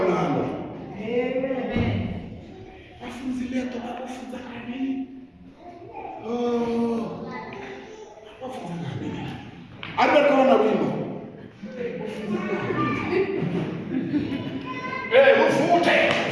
vafunzi leto vatofunza kani Arikona wimbo. Ufute.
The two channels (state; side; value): identical; both; correlation 1.00